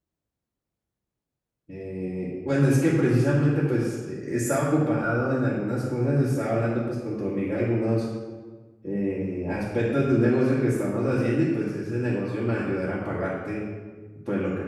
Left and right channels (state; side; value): identical; both; correlation 1.00